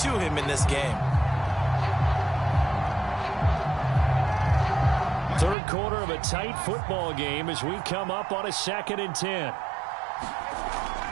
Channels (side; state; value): left; drops out; at 5.6 s